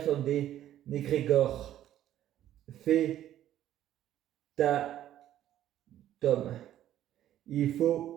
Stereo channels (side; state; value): left; quieter; 12.2 dB